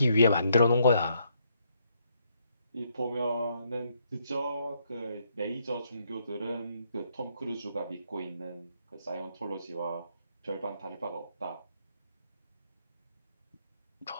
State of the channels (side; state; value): both; inverted; correlation -0.73